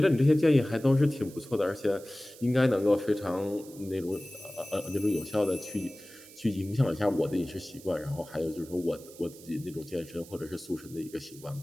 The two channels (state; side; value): noise; right; hiss, 20 dB below the sound